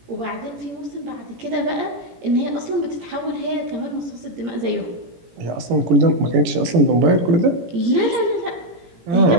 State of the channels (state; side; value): late; left; 17 ms